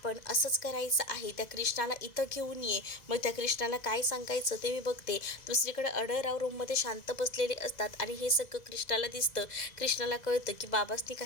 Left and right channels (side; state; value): right; late; 2.0 ms